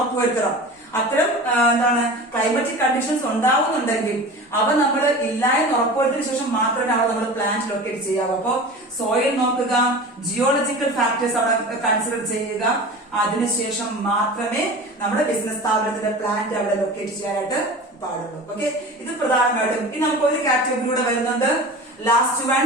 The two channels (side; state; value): both; normal; correlation 0.35